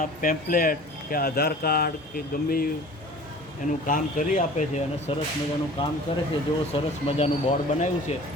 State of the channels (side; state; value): both; normal; correlation 0.44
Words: પેમ્પલેટ કે આધાર કાર્ડ કે ગમે એનું કામ કરી આપે છે અને સરસ મજાનું કામ કરે છે. જુઓ સરસ મજાનું બોર્ડ બનાવ્યું છે